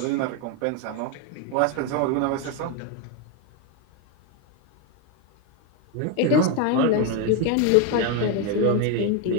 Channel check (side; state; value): both; different; correlation 0.02